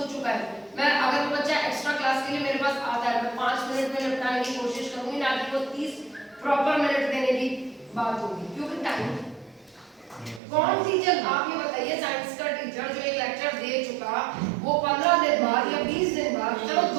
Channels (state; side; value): drops out; left; at 10.4 s